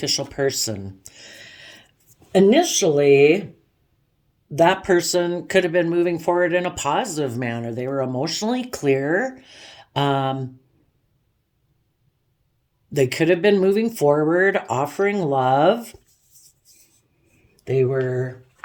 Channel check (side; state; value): both; identical; correlation 1.00